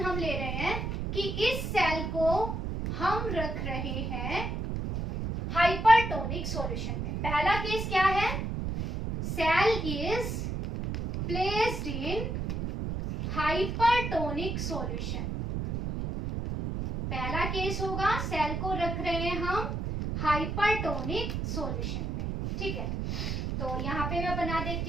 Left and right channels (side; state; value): right; noise; rumble, 3 dB below the sound